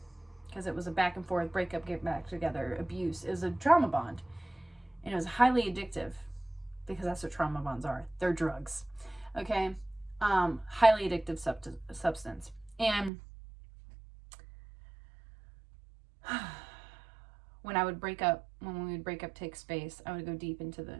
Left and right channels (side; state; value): left; drops out; at 13.1 s